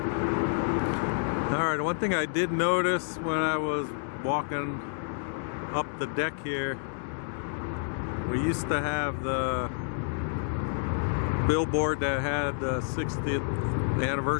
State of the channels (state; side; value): silent; right; digital silence